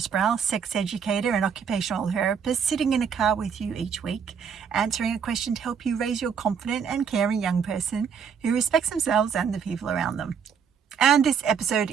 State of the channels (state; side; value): quieter; left; 7.0 dB